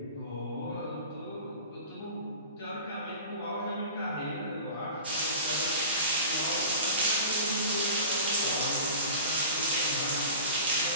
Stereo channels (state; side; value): inverted; both; correlation -0.37